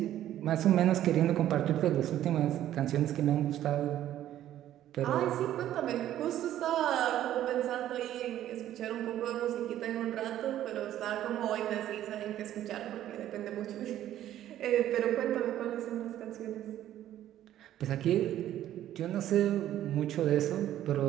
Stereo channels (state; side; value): quieter; left; 12.3 dB